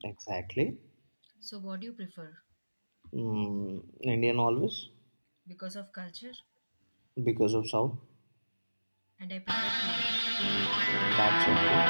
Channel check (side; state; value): both; inverted; correlation -1.00